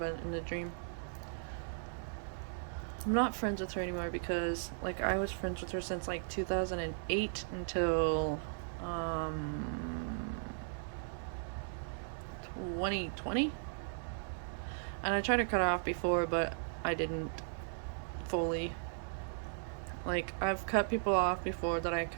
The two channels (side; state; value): left; silent; digital silence